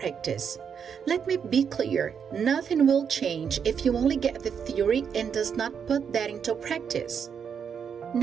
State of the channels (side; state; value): left; quieter; 7.2 dB